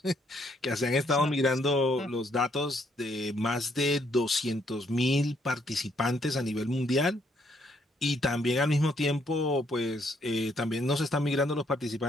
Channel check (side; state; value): both; normal; correlation 0.71